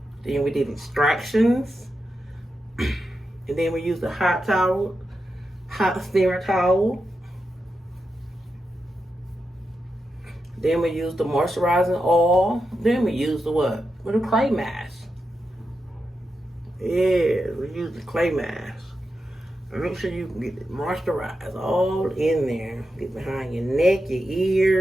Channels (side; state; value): both; normal; correlation 0.88